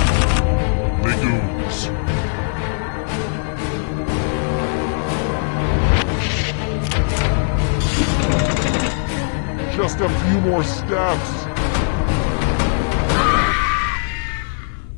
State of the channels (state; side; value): silent; right; 66 dB below the other